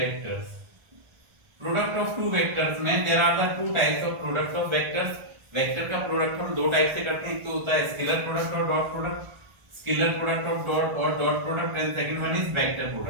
Product of two vectors में there are the two types of product of vectors. Vector का product हम दो type से करते हैं, एक तो होता है स्केलर प्रोडक्ट और dot product. Scalar product of dot और dot product, and second one is vector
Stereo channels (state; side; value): late; left; 1.4 ms